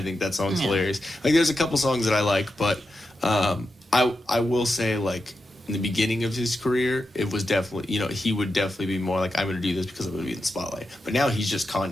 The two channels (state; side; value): normal; both; correlation 0.88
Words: think that song's hilarious. Like, there's a couple songs that I like, but I will say, like, in the beginning of his career, it was definitely, he would definitely be more like, I'm going to do this because I'm going to be in the spotlight. But now he's just